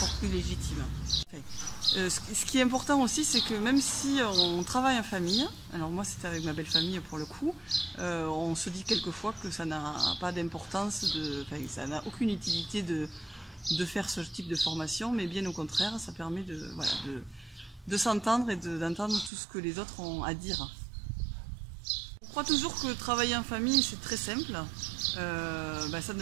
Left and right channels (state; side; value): drops out; left; at 19.3 s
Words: plus légitime. Ce qui est important aussi, c'est que même si on travaille en famille, alors moi c'était avec ma belle famille pour le coup, on se dit quelquefois que ça n'a pas d'importance, ça n'a aucune utilité de faire ce type de formation, mais bien au contraire, ça permet de s'entendre et d'entendre tout ce que les autres ont à dire. Je crois toujours que travailler en famille c'est très simple, ça